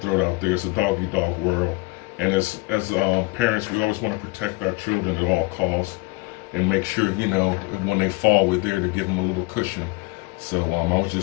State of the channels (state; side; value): quieter; right; 23.7 dB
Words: out there. It's a dog-eat-dog world. And as parents, we always want to protect our children at all costs and make sure, when they fall, we're there to give them a little cushion. So I was